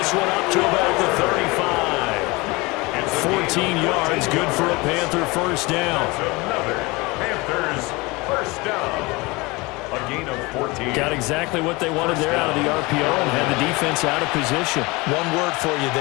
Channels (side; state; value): right; quieter; 24.1 dB